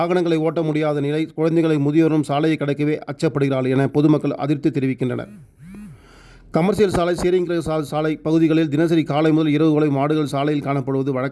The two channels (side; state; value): both; identical; correlation 1.00